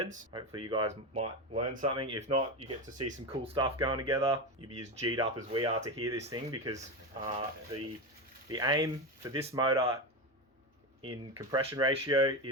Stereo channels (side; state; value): both; normal; correlation 0.17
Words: Hopefully you guys might learn something. If not, you get to see some cool stuff going together. You'll be as G'd up as we are to hear this thing because the aim for this motor in compression ratio